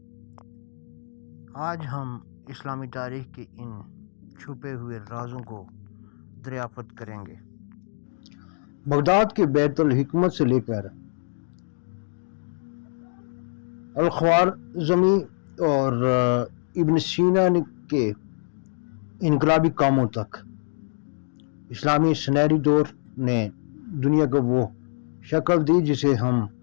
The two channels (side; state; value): right; silent; digital silence